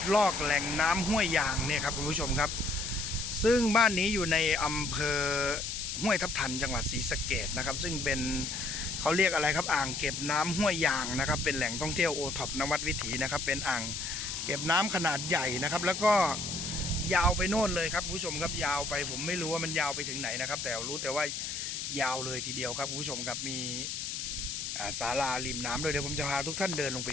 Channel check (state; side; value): noise; left; hiss, 4 dB below the sound